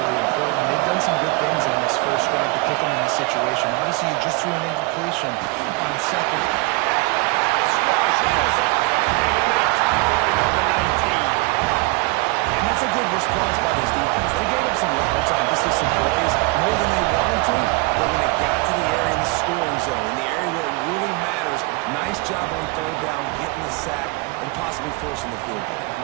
really important. They've done some good things on this first drive to put them in this situation. Obviously, you just threw an incompletion on second. And that's a good response by this defense. They gave up some yards, obviously some plays, more than they wanted to, but when it got to the area in the scoring zone, in the area where it really matters, nice job on 3rd down, getting the sack, and possibly forcing the field goal.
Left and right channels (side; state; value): left; quieter; 25.3 dB